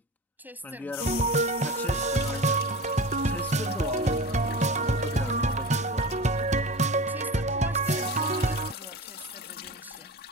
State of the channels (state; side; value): normal; both; correlation 0.31